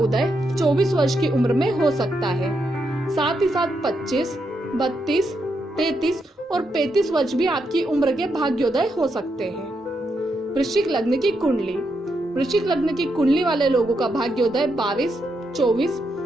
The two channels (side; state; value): both; normal; correlation 0.82